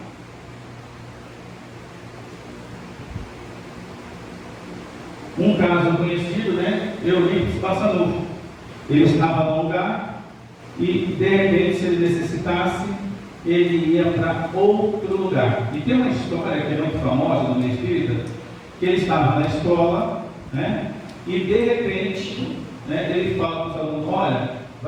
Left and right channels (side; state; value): both; identical; correlation 1.00